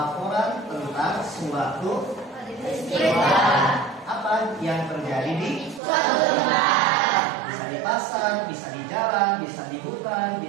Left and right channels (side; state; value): left; drops out; at 5.8 s